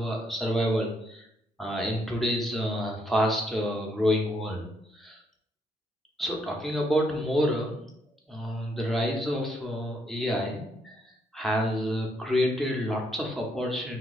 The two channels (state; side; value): normal; both; correlation 0.74